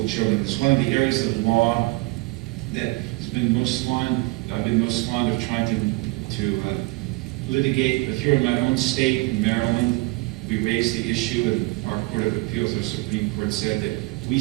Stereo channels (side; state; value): left; quieter; 24.1 dB